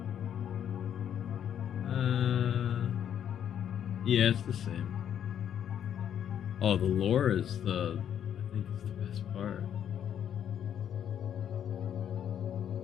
Yeah, it's the same. Oh, the lore is I think it's the best part.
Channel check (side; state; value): right; quieter; 9.4 dB